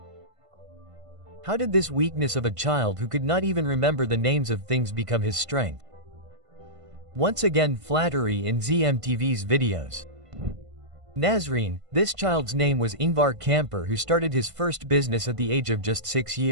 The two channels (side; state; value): left; late; 1.5 ms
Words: How did this weakness of a child who could not even remember the names of things become his strength? Once again, flattery in ZMTV's videos. Nazreen, this child's name was Ingvar Kamper, who started his first business at the age of just 6